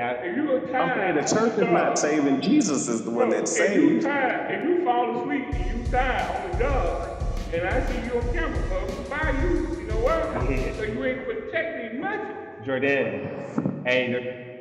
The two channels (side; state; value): both; identical; correlation 1.00